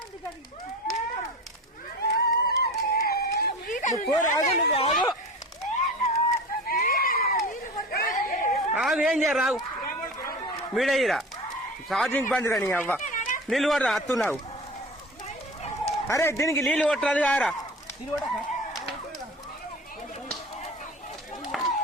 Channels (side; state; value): both; normal; correlation 0.34